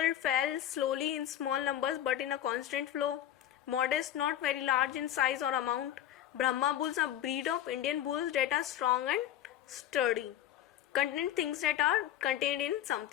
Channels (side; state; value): right; quieter; 11.6 dB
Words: fell slowly in small numbers but in a constant flow. Modest, not very large in size or amount. Brahma bulls are a breed of Indian bulls that are strong and sturdy. Contain things that are contained in